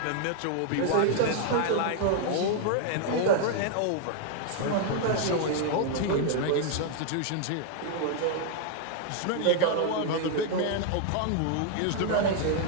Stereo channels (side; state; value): both; different; correlation 0.00